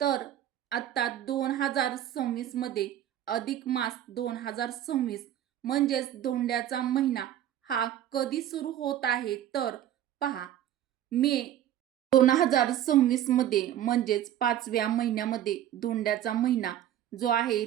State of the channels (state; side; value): quieter; left; 11.5 dB